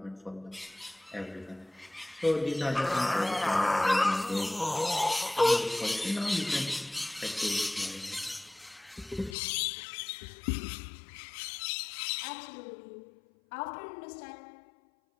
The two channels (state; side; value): drops out; right; at 9.3 s